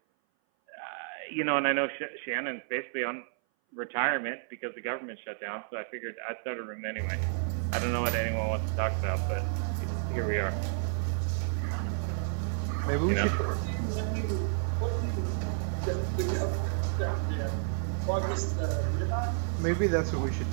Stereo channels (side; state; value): left; silent; 57 dB below the other